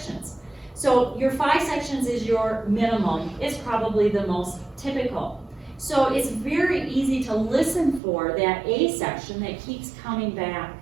So your 5 sections is your minimum. It's probably the most typical. So it's very easy to listen for that A section that keeps coming back.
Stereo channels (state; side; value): drops out; left; at 8.0 s